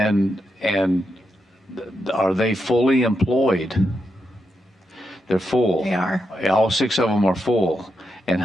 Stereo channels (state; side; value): normal; both; correlation 0.84